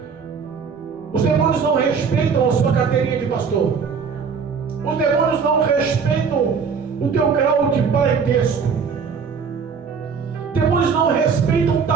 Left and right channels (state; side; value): quieter; left; 5.9 dB